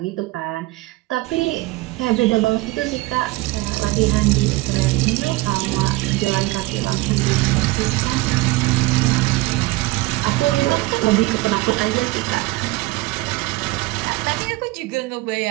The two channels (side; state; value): left; quieter; 20.7 dB